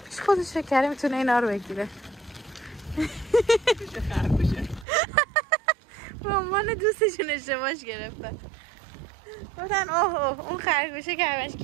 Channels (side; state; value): left; drops out; at 4.9 s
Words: خودش فکر کرده میتونه اینا رو بگیره. به عنوان دوستشون اشتباهش گرفتن. گفتن اوه اون خرگوشه که همش